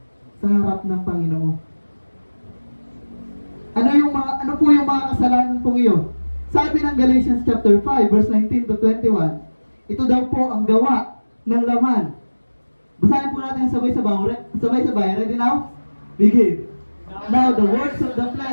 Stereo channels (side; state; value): both; inverted; correlation -1.00